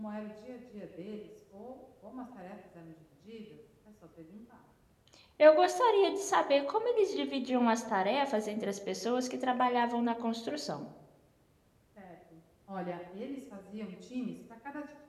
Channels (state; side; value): identical; both; correlation 1.00